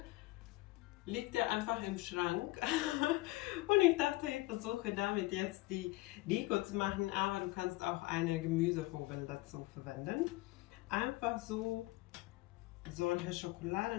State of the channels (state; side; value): quieter; right; 20.8 dB